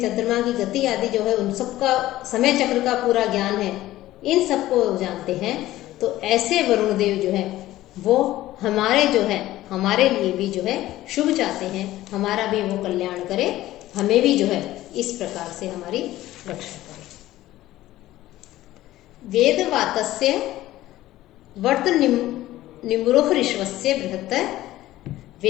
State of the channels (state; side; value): quieter; right; 15.4 dB